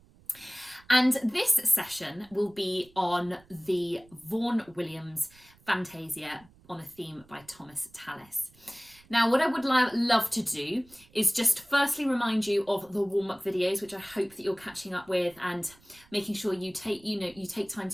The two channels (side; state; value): right; noise; rumble, 28 dB below the sound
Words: And this session will be on the Vaughan Williams Fantasia on a theme by Thomas Tallis. Now, what I would love to do is just firstly remind you of the warm-up videos, which I hope that you're catching up with and making sure you take time